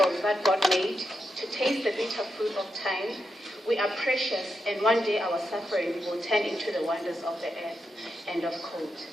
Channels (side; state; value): both; normal; correlation 0.85